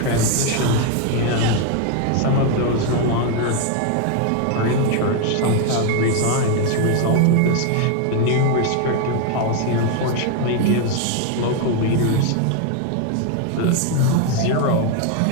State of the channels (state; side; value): different; both; correlation 0.01